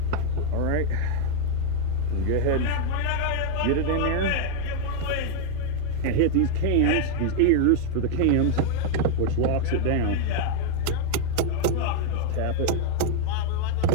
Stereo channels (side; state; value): both; different; correlation 0.00